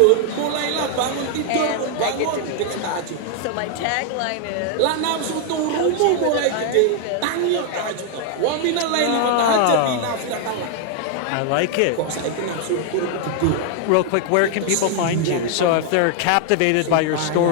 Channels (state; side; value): different; both; correlation 0.00